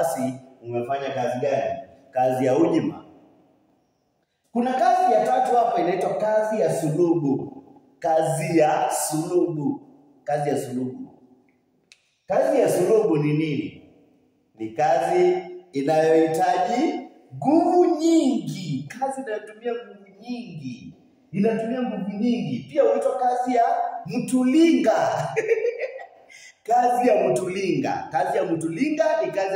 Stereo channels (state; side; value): identical; both; correlation 1.00